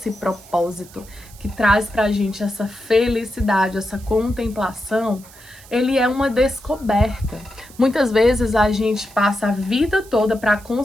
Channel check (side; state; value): right; noise; hiss, 22 dB below the sound